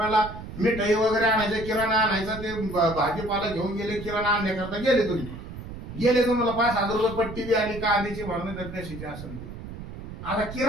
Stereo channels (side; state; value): right; noise; rumble, 11 dB below the sound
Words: मिठाई वगैरे आणायचं, किराणा आणायचा, ते भाजीपाला घेऊन गेले, किराणा आणण्याकरता गेले तुम्ही, गेले तुम्हाला 5,000 रुपये पट्टी बी आली, कांद्याची म्हणून तर कशाची असेल ती. आता